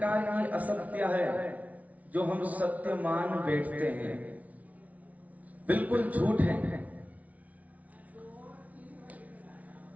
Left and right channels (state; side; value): late; left; 0.070 ms